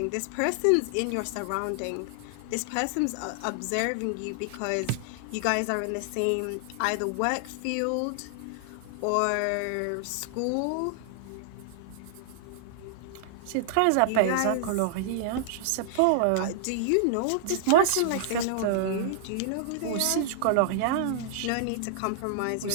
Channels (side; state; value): both; different; correlation -0.01